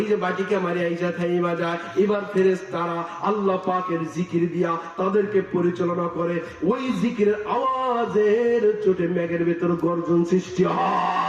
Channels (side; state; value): both; identical; correlation 1.00